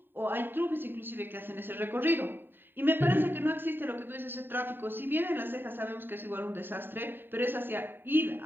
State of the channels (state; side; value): late; left; 0.096 ms